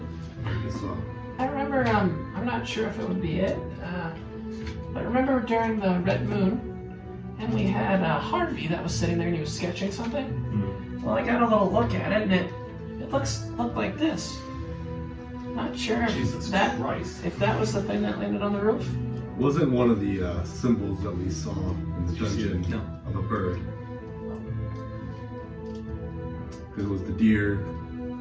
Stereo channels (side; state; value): both; identical; correlation 1.00